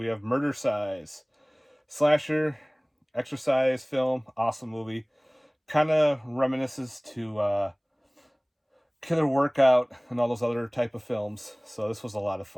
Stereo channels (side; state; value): both; identical; correlation 1.00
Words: have Murder Size. Slasher, exercise film, awesome movie. Kind of reminisces to Killer Workout and all those other type of films. So this was a lot of